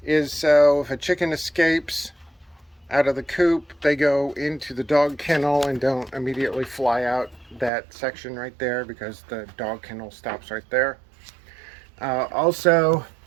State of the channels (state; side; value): drops out; left; at 7.7 s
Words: is so if a chicken escapes out of the coop, they go into the dog kennel and don't immediately fly out that section right there, because the dog kennel stops right there. Also,